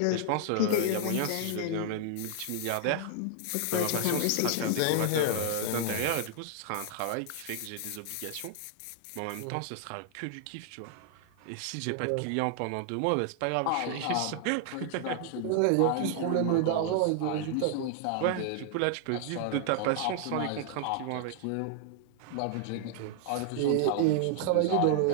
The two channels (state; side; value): different; both; correlation 0.00